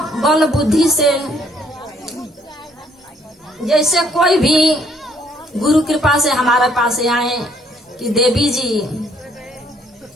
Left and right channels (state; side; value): normal; both; correlation 0.65